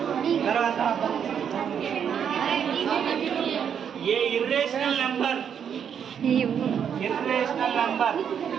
తర్వాత ఏ ఇర్రేషనల్ నెంబర్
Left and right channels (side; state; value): left; quieter; 8.0 dB